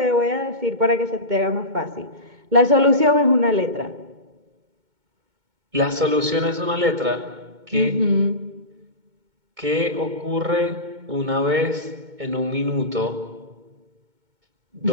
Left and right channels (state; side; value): late; left; 2.2 ms